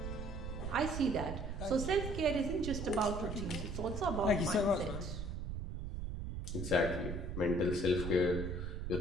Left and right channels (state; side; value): noise; right; rumble, 5 dB below the sound